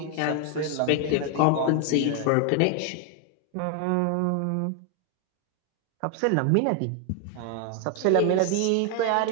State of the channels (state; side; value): different; both; correlation 0.01